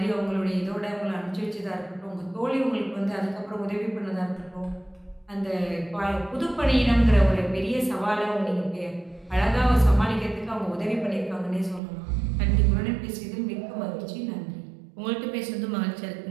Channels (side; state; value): left; drops out; at 11.8 s